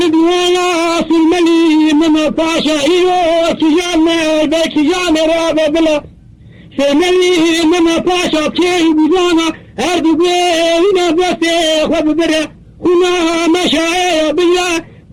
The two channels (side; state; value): both; identical; correlation 1.00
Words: سلملي من طاشا إيو تجانا بيك جانا رابا بلا سلملي من طاشا كي بجانا أردو بينا بسي خب برا هنا مشاعر بالله